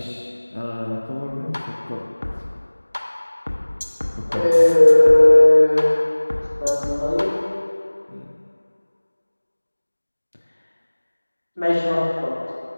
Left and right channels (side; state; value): both; inverted; correlation -1.00